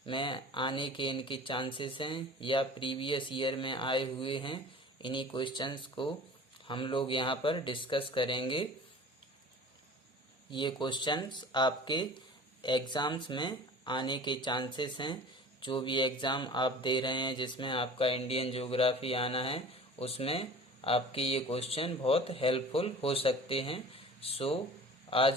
में आने के इनके चांसेस हैं या प्रीवियस ईयर में आए हुए हैं, इन्हीं क्वेश्चंस को हम लोग यहाँ पर डिस्कस करेंगे। ये क्वेश्चंस आपके एग्ज़ाम्स में आने के चांसेस हैं। जो भी एग्ज़ाम आप दे रहे हैं जिसमें आपका इंडियन ज्योग्राफी आना है, उसमें आपके ये क्वेश्चन बहुत हेल्पफुल हो सकते हैं। सो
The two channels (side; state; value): both; normal; correlation 0.42